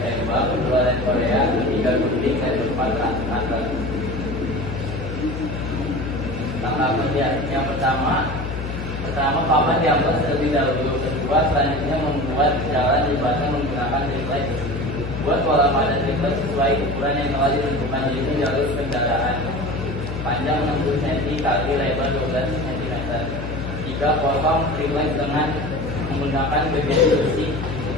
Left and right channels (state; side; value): noise; left; hum, 7 dB below the sound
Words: tembak, kedua lem Korea, ketiga gunting, dan keempat rangka. Langkah kerja yang pertama papan diambil terlebih dahulu. Kedua, selanjutnya membuat jalan jembatan menggunakan triplek. Buat pola pada triplek sesuai ukuran yang telah ditentukan, yaitu jalur kendaraan panjang 60 cm kali lebar 12 cm. 3. Potong triplek dengan menggunakan bagian besi